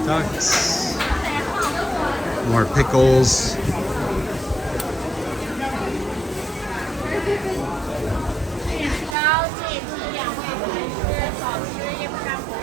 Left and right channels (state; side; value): drops out; left; at 9.2 s